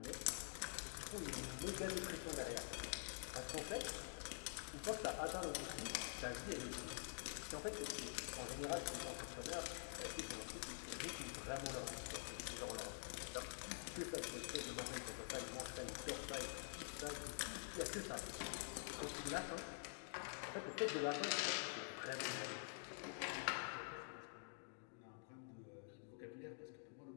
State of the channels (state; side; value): silent; right; digital silence